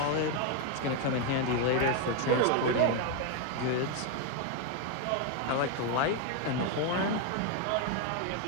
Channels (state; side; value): different; both; correlation 0.01